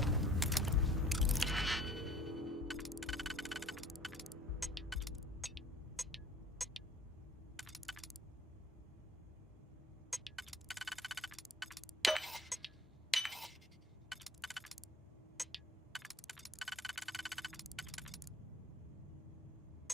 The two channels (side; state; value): both; normal; correlation 0.50